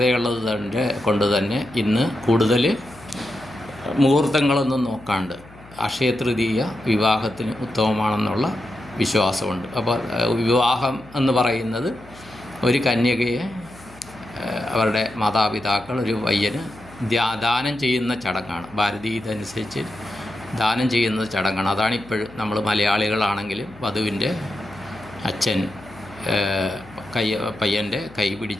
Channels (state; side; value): noise; left; hum, 22 dB below the sound